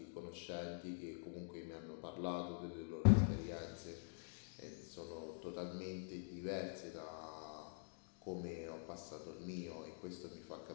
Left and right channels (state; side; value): silent; right; digital silence